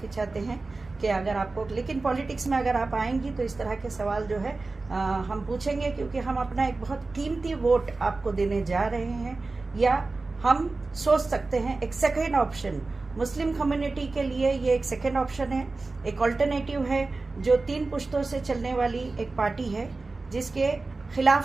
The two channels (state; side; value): quieter; left; 3.6 dB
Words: चाहते हैं कि अगर आपको, लेकिन पॉलिटिक्स में अगर आप आएंगी तो इस तरह के सवाल जो है हम पूछेंगे, क्योंकि हम अपना एक बहुत कीमती वोट आपको देने जा रहे हैं। या हम सोच सकते हैं एक सेकेंड ऑप्शन, मुस्लिम कम्युनिटी के लिए ये एक सेकेंड ऑप्शन है, एक ऑल्टरनेटिव है जो 3 पुश्तों से चलने वाली एक पार्टी है जिसके